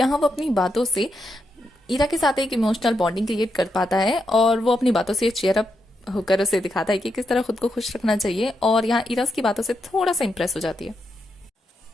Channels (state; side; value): normal; both; correlation 0.83